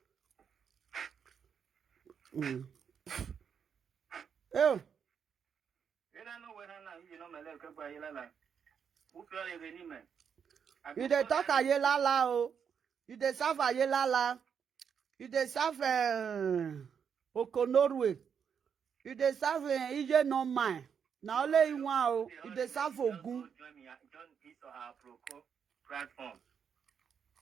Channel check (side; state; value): left; quieter; 7.2 dB